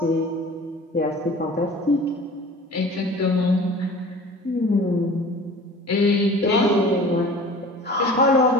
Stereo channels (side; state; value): both; normal; correlation 0.42